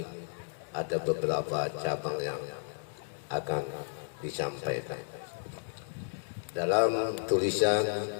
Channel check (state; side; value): silent; right; digital silence